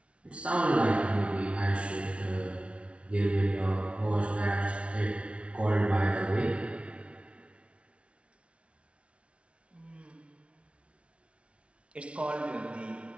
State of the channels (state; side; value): late; left; 0.061 ms